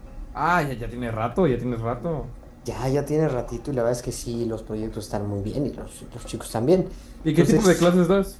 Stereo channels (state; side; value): identical; both; correlation 1.00